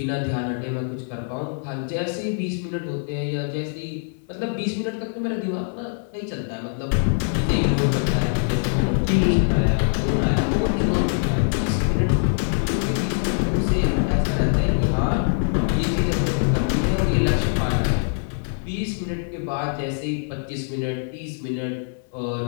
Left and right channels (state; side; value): silent; right; digital silence